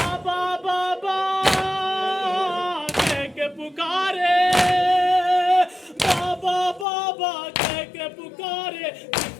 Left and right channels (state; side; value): drops out; right; at 6.9 s